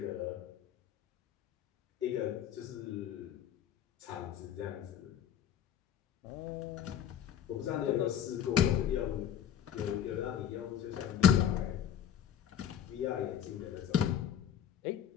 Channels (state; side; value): quieter; right; 9.6 dB